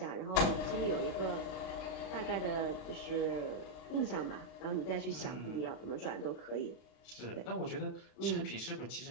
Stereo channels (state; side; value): late; right; 36 ms